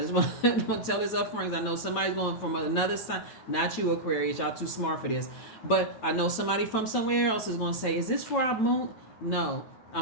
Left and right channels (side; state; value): right; late; 9.1 ms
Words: just want to tell this up front because I know somebody's going from another sign. Not you, Aquarius. Y'all too smart for this. But I know somebody from somewhere else is going to say, is this for our moon? No.